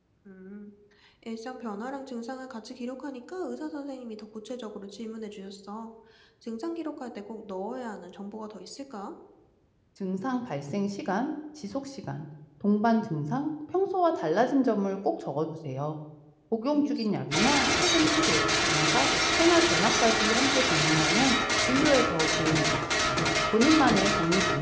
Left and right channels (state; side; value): identical; both; correlation 1.00